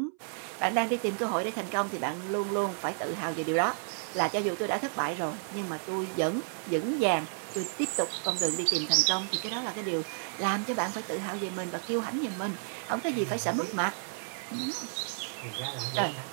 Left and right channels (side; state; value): left; silent; 57 dB below the other